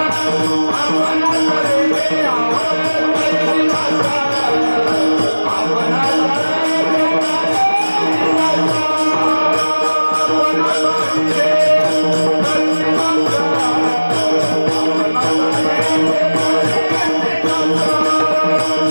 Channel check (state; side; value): inverted; both; correlation -1.00